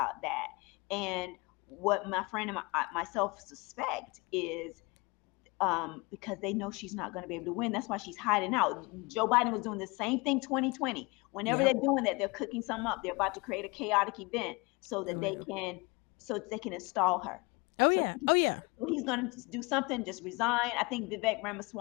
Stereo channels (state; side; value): quieter; right; 26.5 dB